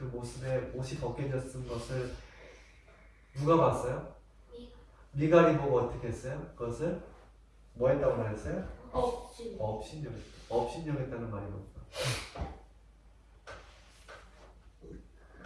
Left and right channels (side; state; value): both; identical; correlation 1.00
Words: 모습에 옷이 벗겨졌은 것을 누가 봤어요? 미갈이 보고 어떻게 했어요? 그것을 뭐 했다고 말했어요? 없지. 업신여겼다. 업신여겼다는 말이 뭘까?